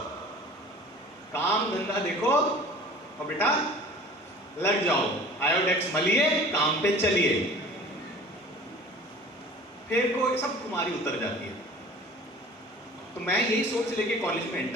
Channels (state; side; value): normal; both; correlation 0.44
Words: काम धंधा देखो और बेटा लग जाओ, आयोडेक्स मलिए, काम पे चलिए, फिर कोई सब तुम्हारी उतर जाती है। तो मैं यही सोच लेके कॉलेज में